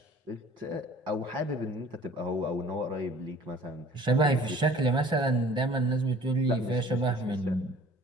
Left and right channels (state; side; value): normal; both; correlation 0.50